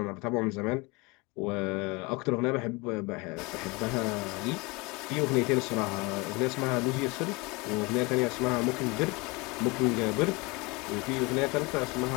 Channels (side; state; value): right; quieter; 26.5 dB